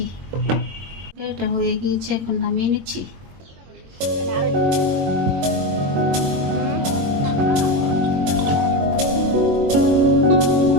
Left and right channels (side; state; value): left; late; 22 ms